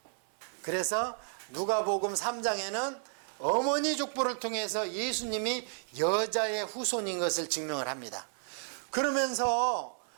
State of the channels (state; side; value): silent; left; 56 dB below the other